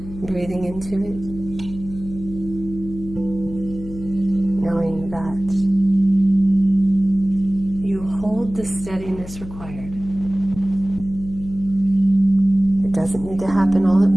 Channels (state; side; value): noise; left; hum, 13 dB below the sound